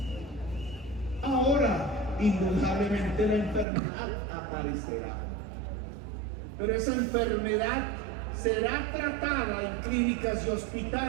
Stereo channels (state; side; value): drops out; left; at 3.7 s